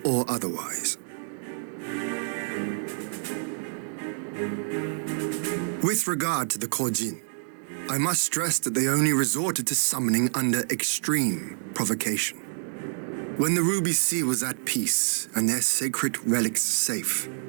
or otherwise. With regard to the Korjin, I must stress that they only resorted to summoning under extreme provocation. When the Ruby Sea was at peace and their sacred relics safe,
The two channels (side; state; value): left; silent; digital silence